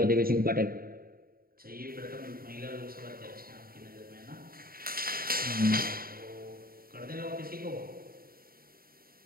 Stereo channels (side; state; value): left; late; 0.43 ms